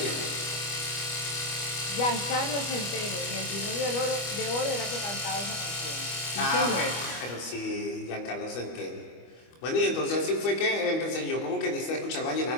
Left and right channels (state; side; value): late; right; 25 ms